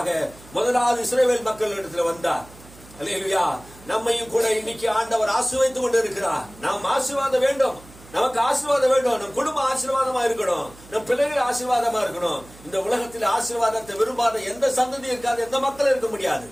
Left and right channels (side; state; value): right; noise; hum, 22 dB below the sound